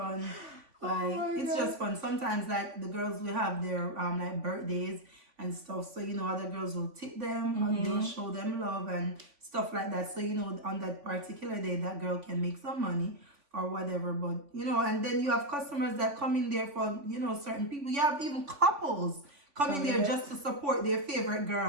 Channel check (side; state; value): left; late; 3.5 ms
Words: Like it's God. just fun. Sometimes like the girls will have their like birthdays and stuff. So other girls will tip them and they'll show them love and stuff like that. So on that particular day that girl can make some money or whatever. But and then you have customers that come in there for certain people. You have even couples come in there just to support their favorite